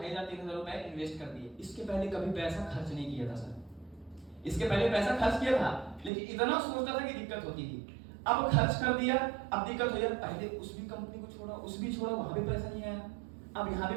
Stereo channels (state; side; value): drops out; left; at 6.1 s